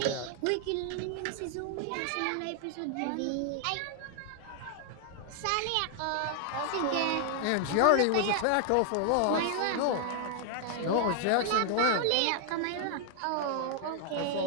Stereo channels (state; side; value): different; both; correlation 0.00